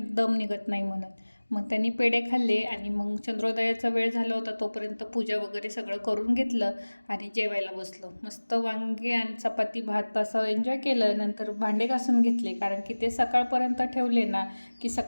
दम निघत नाही म्हणून. मग त्यांनी पेढे खाल्ले आणि मग चंद्रोदयाचा वेळ झाला होता, तोपर्यंत पूजा वगैरे सगळं करून घेतलं आणि जेवायला बसलो. मस्त वांगे आणि चपाती भात असं एन्जॉय केलं. नंतर भांडे घासून घेतले, कारण की ते सकाळपर्यंत ठेवले ना की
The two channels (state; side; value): inverted; both; correlation -1.00